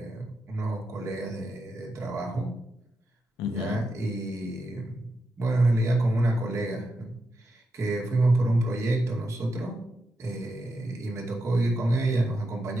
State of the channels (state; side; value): normal; both; correlation 0.86